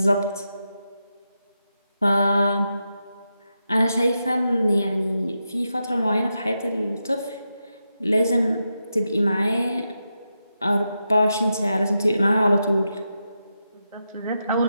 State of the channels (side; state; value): both; inverted; correlation -0.87